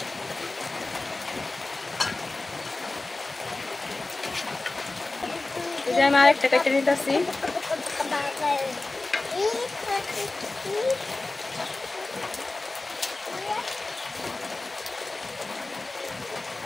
আমি আরেকটা কাটে নিতেছি।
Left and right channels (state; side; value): quieter; right; 3.1 dB